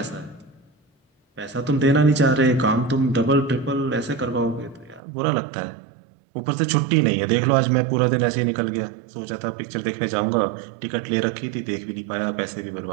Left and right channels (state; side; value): drops out; left; at 5.0 s